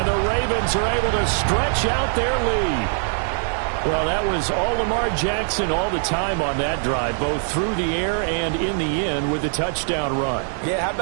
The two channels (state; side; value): silent; left; digital silence